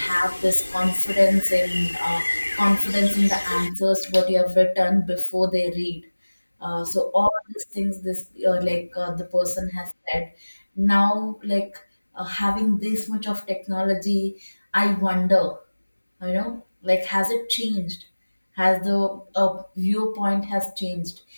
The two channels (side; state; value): both; inverted; correlation -1.00